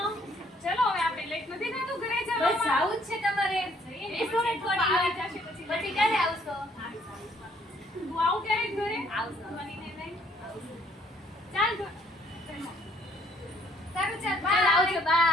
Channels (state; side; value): normal; both; correlation 0.64